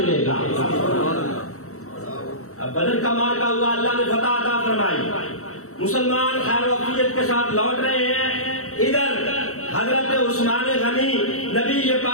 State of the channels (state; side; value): late; right; 0.64 ms